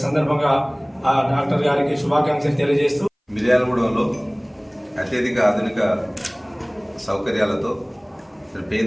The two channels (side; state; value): both; identical; correlation 1.00